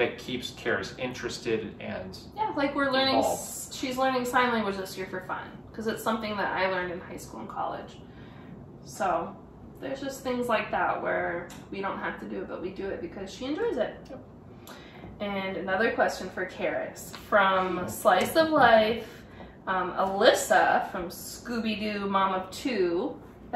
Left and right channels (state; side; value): identical; both; correlation 1.00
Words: keeps Caris interested and yeah, like we're learning, involved. she's learning sign language this year for fun, because it's something that I learned in high school and college. So there's just things like that where we don't have to do it, but we do it because she enjoys it. And another question for Caris from Slice of Life, Alyssa from Scooby-Doo Mom of 2,